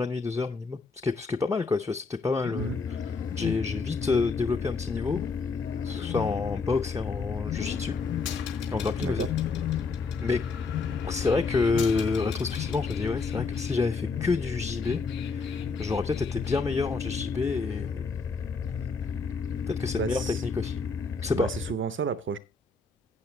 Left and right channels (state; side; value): quieter; right; 4.2 dB